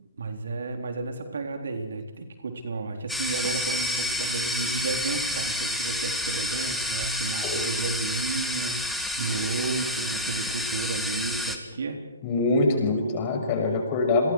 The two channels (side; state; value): both; normal; correlation -0.11